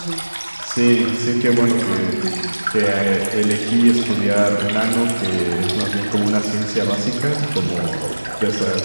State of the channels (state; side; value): inverted; both; correlation -1.00